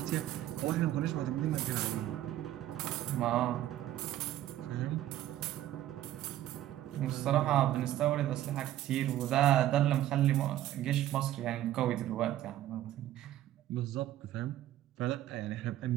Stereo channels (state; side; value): quieter; left; 13.2 dB